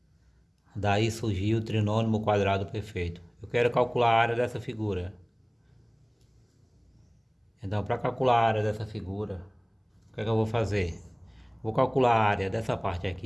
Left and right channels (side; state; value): both; identical; correlation 1.00